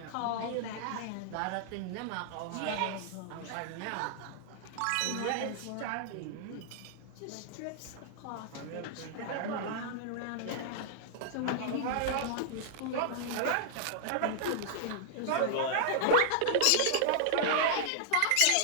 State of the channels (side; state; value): both; different; correlation -0.01